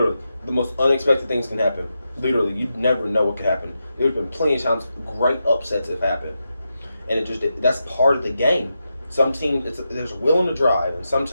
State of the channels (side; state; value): both; inverted; correlation -0.88